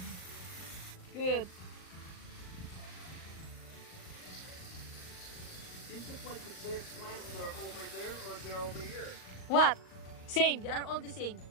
Good. Seems like the same plants are over there or they're over here. What? Same. They are all the same.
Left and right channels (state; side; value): late; right; 39 ms